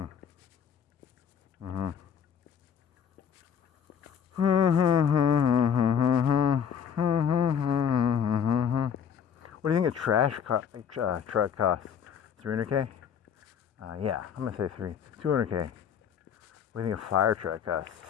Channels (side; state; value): right; quieter; 7.8 dB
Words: What do you think a truck costs? 300K? Yeah, I'm gonna say 200K. What do you think a fire truck costs?